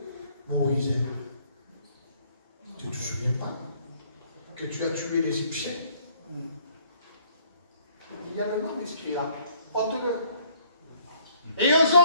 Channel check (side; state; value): both; inverted; correlation -0.63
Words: Moïse, tu ne te souviens pas que tu as tué l'Égyptien? Il y a le nom inscrit là. Ôte-le. Et